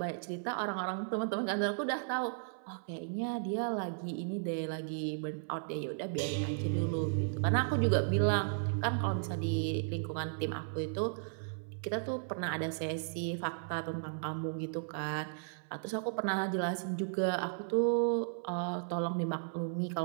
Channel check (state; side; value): silent; left; 54 dB below the other